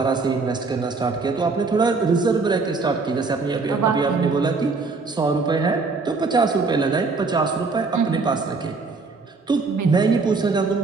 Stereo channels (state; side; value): quieter; left; 4.1 dB